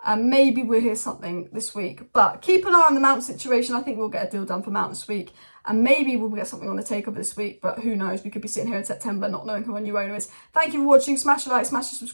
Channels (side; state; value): both; inverted; correlation -1.00